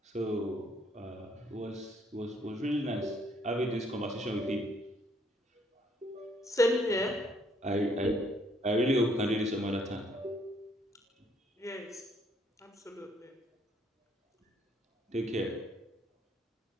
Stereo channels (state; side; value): normal; both; correlation 0.67